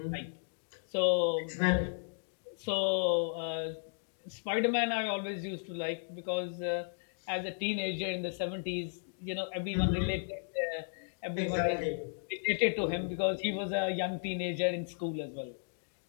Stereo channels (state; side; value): silent; right; digital silence